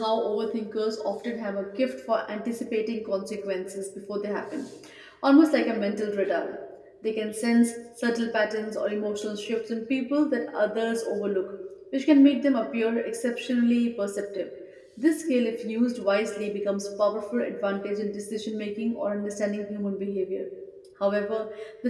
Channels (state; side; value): identical; both; correlation 1.00